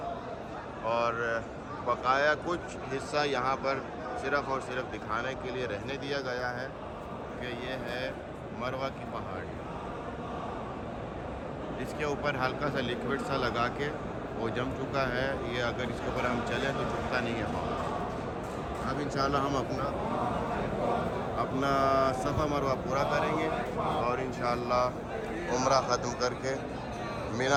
اور بقایا کچھ حصہ یہاں پر صرف اور صرف دکھانے کے لیے رہنے دیا گیا ہے کہ یہ ہے مروہ کی پہاڑی. اس کے اوپر ہلکا سا لیکوڈ سا لگا کے وہ جم چکا ہے. یہ اگر اس کے اوپر ہم چلیں تو چکتا نہیں ہے پاؤں. اب انشاءاللہ ہم اپنا صفا مروہ پورا کریں گے اور انشاءاللہ عمرہ ختم کر کے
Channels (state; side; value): identical; both; correlation 1.00